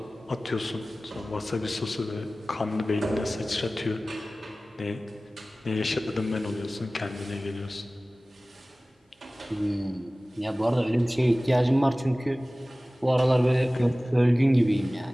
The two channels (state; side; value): normal; both; correlation 0.97